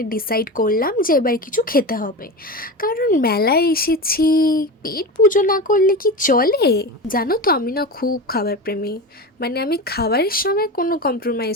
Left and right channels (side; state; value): both; normal; correlation 0.25